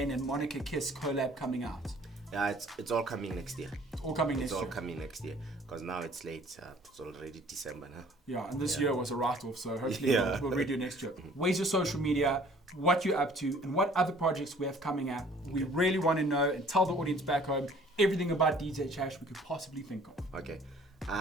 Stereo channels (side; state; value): both; normal; correlation 0.54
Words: and Monica Kiss collab coming out? Yeah, it's all coming next year. all coming It's next all year. coming next year because now it's late. It's already December now. Yeah, and this year was a write-off, so hopefully Yeah. we'll redo next year. Where's your social media, what you're up to, and what other projects we have coming up. We really want to know and tell the audience back home everything about DJ Tash we could possibly think of. Okay.